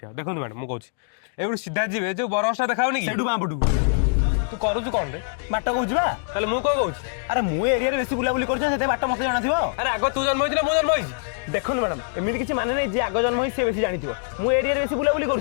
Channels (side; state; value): right; silent; digital silence